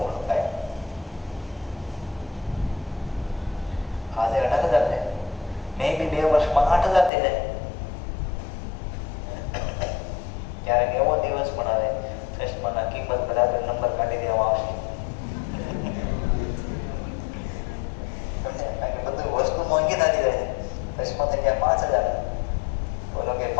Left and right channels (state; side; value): drops out; right; at 7.1 s